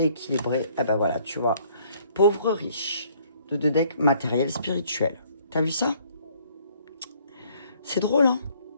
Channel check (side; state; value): both; inverted; correlation -0.62